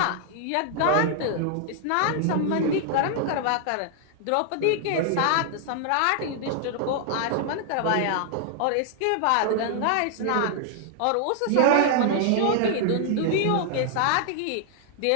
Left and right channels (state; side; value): different; both; correlation 0.00